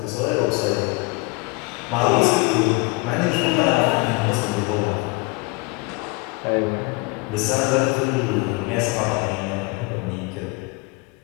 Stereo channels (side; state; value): right; quieter; 26.3 dB